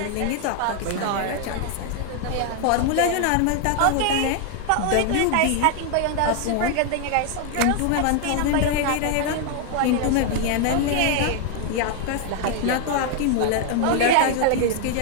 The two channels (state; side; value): different; both; correlation 0.00